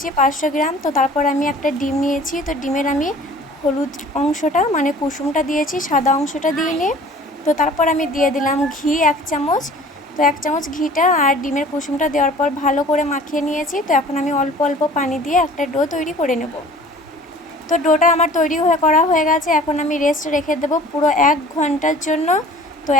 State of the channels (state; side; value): normal; both; correlation 0.48